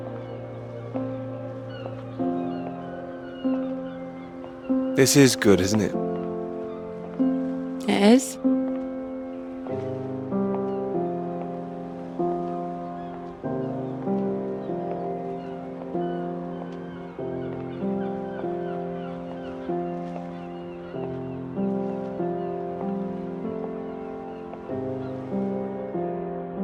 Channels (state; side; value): identical; both; correlation 1.00